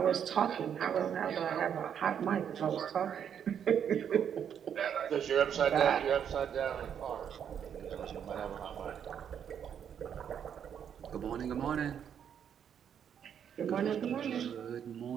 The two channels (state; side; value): quieter; left; 8.5 dB